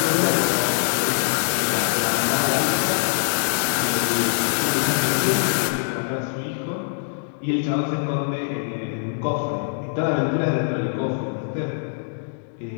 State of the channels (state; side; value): silent; right; digital silence